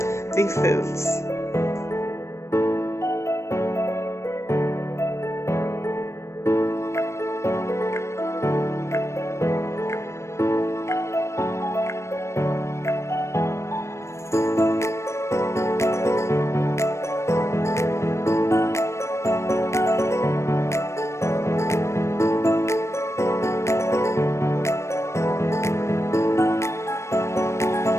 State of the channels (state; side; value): late; right; 0.13 ms